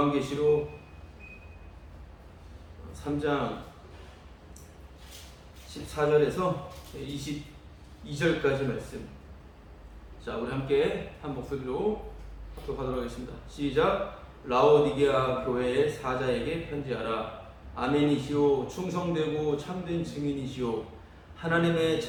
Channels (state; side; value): identical; both; correlation 1.00